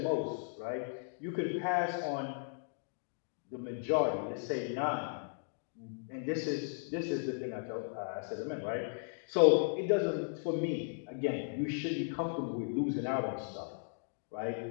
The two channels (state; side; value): silent; right; digital silence